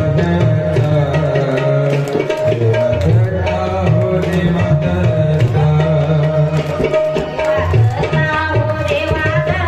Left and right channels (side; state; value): both; identical; correlation 1.00